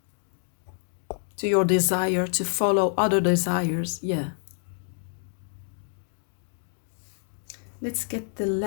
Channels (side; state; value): right; silent; digital silence